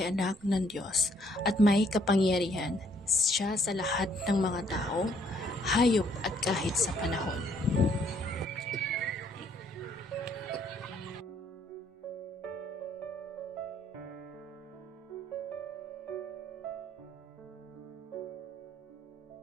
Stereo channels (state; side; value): normal; both; correlation 0.66